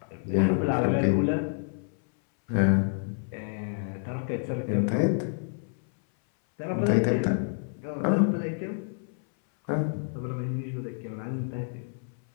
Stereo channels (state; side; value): silent; right; 59 dB below the other